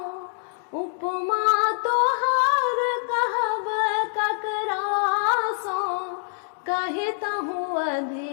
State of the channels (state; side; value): silent; right; digital silence